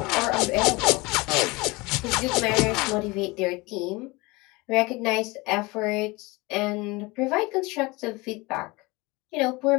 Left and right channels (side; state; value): right; quieter; 24.0 dB